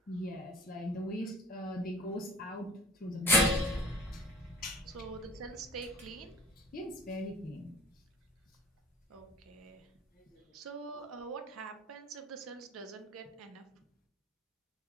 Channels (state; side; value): normal; both; correlation 0.46